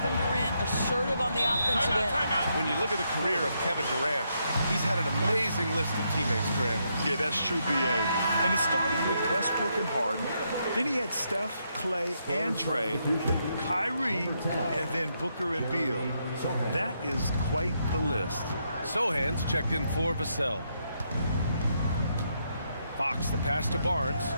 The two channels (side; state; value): both; inverted; correlation -0.78